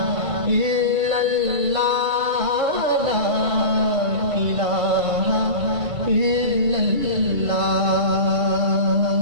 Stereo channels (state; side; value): late; left; 2.3 ms